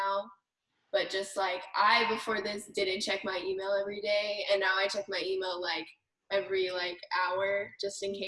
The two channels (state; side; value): identical; both; correlation 1.00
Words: But just like I before this didn't check my email every day, and now I check my email like every like hour just in